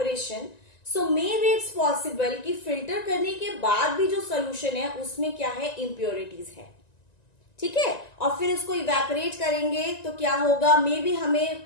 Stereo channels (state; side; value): late; right; 1.9 ms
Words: so maybe it's possible कि filter करने के बाद भी जो solution है उसमें क्या है? Impurities है. ठीक है? और फिर इसको evaporate करेंगे तो क्या होगा? Maybe हमें